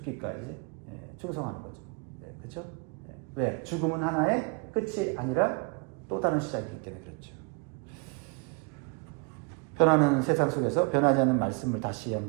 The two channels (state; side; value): quieter; left; 32.5 dB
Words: 충성하는 거죠. 그렇죠? 왜? 죽음은 하나의 끝이 아니라 또 다른 시작이기 때문에 그렇죠. 변하는 세상 속에서 변하지 않는 말씀을 다시